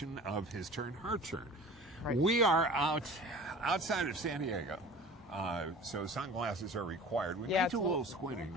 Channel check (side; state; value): both; normal; correlation 0.41